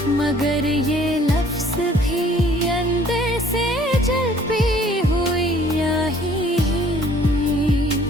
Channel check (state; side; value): normal; both; correlation 0.57